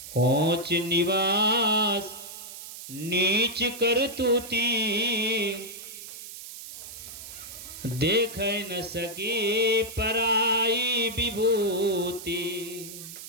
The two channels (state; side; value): noise; right; hiss, 12 dB below the sound